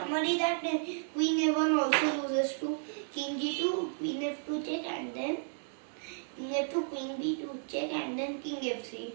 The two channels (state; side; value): silent; left; digital silence